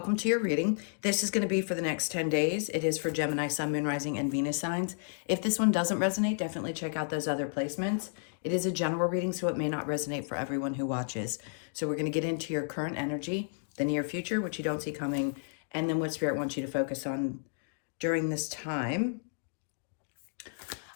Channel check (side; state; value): right; silent; digital silence